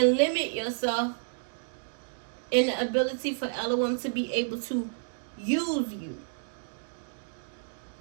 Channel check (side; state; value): left; silent; digital silence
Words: limit yourself in the ability for Elohim to be able to use you